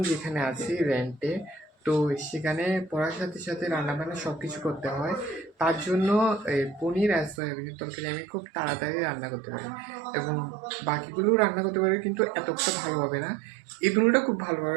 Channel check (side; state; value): left; drops out; at 7.4 s